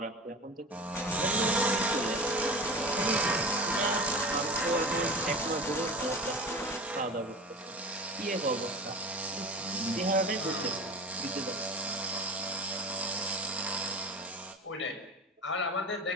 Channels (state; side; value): normal; both; correlation 0.32